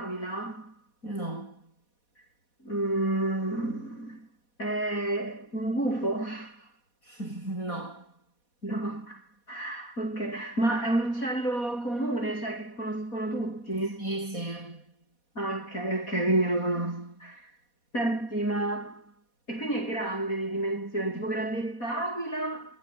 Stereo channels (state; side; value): late; right; 4.2 ms